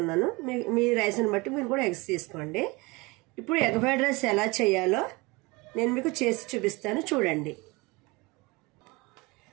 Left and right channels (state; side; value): quieter; left; 24.8 dB